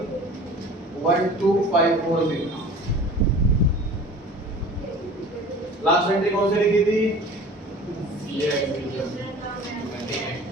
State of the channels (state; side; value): normal; both; correlation 0.43